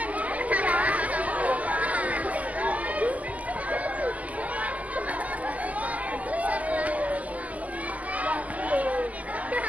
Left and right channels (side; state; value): left; late; 0.069 ms